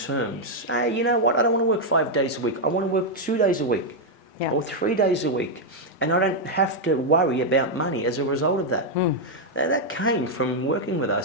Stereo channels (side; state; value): both; normal; correlation -0.01